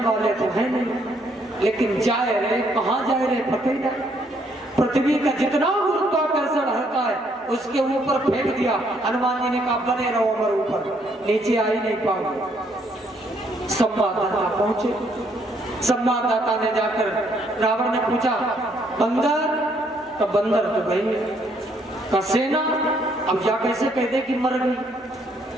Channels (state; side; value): normal; both; correlation 0.69